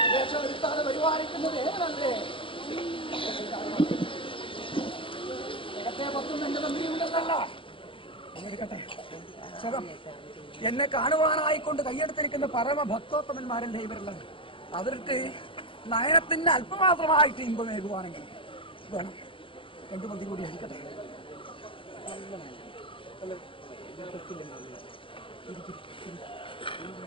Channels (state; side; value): late; right; 0.25 ms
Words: ദേശമെടുത്താതെ പരിപാലിക്കുന്നത് ഏതല്ലേ? ജഗത്തെ പത്തും എന്റെ തന്ത്രിയുണ്ടല്ല. എടുക്കട്ടെ. എന്നെ കാണുവാനായിക്കൊണ്ട് കയ്യെടുത്തിരിക്കുന്ന പരമഭക്തോത്തമന്മാരല്ലേ ഇവരുള്ളത്. അവർക്ക് നയനത്തിന് അല്പമാത്രമായിട്ട് ഇമ്പമേകുവാണെങ്കിൽ വേണം. രണ്ടു മതി കൂടി അടിക്കട്ടെ.